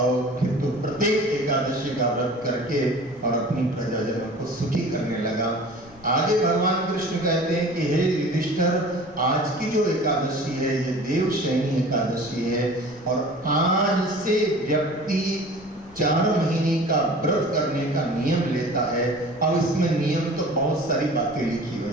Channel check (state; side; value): noise; left; rumble, 26 dB below the sound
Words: फिर तो प्रत्येक एकादशी का व्रत करके और अपनी प्रजाजनों को सुखी करने लगा। आगे भगवान कृष्ण कहते हैं कि हे युधिष्ठिर, आज की जो एकादशी है ये देवशयनी एकादशी है, और आज से व्यक्ति 4 महीने का व्रत करने का नियम लेता है। अब इसमें नियम तो बहुत सारी बातें लिखी